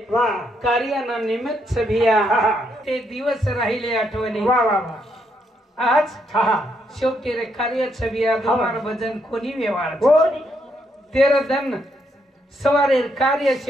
कार्याना निमित्त भैया ते दिवस राहिले आठवणी आज शेवटी रे कार्य भैया तुम्हारा भजन कोणी व्यवहार तेरा धन सवारे कार्य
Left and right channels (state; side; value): normal; both; correlation 0.76